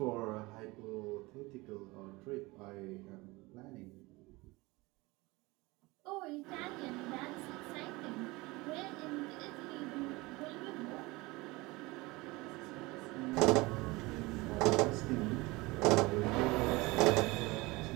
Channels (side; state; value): left; quieter; 22.7 dB